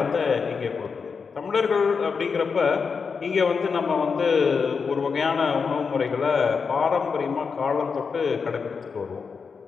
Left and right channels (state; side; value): quieter; right; 5.5 dB